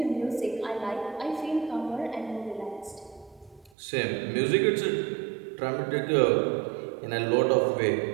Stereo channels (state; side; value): drops out; left; at 3.7 s